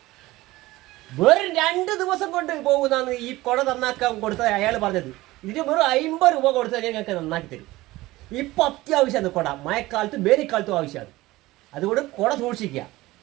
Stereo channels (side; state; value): left; quieter; 18.5 dB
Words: വെറും 2 ദിവസം കൊണ്ട് പോകുന്നതാണ് ഈ കുട നന്നാക്കാൻ കൊടുത്തത് അയാൾ പറഞ്ഞത്. ഇതിന് വെറും 50 രൂപ കൊടുത്താൽ ഞങ്ങൾക്ക് നന്നാക്കി തരും. ഇപ്പം അത്യാവശ്യമാണ് കുട, മഴക്കാലത്തും വേനൽക്കാലത്തും ആവശ്യമാണ്. അതുകൊണ്ട് കുട സൂക്ഷിക്കുക.